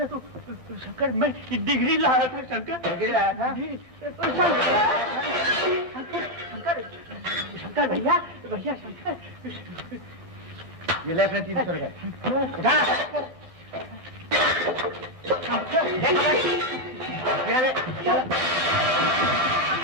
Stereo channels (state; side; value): late; right; 1.6 ms